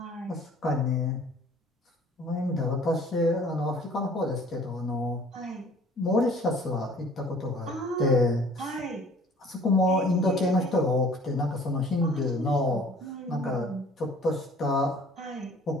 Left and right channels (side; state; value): both; normal; correlation 0.52